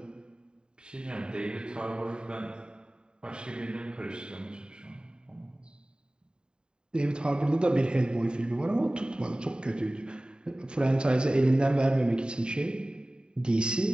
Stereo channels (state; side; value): late; left; 0.048 ms